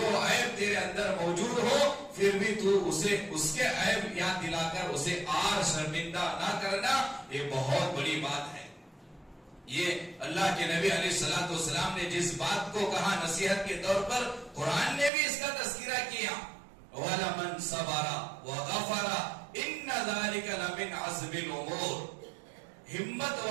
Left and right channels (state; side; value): drops out; left; at 15.1 s